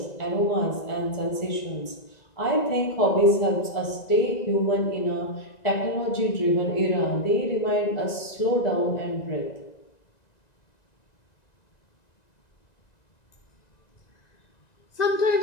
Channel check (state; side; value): late; right; 1.9 ms